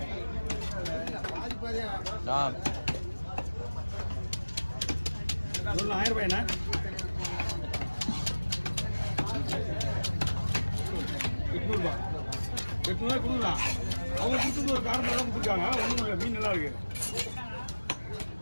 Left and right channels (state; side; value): inverted; both; correlation -1.00